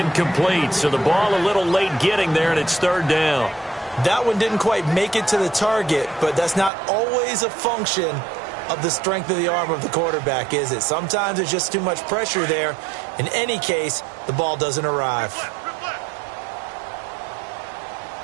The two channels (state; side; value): drops out; left; at 6.7 s